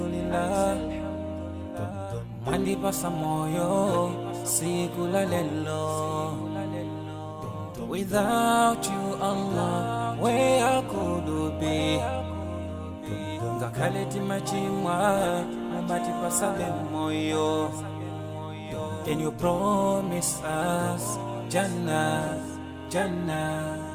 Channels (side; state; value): both; identical; correlation 1.00